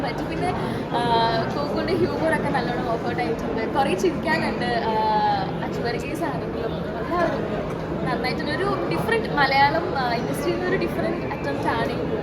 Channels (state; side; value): identical; both; correlation 1.00